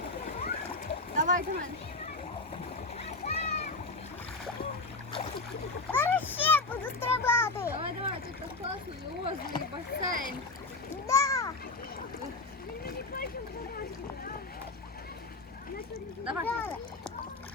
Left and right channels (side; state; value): right; quieter; 3.4 dB